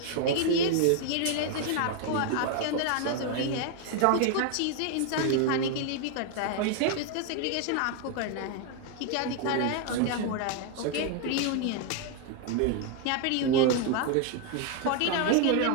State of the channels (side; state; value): both; different; correlation 0.01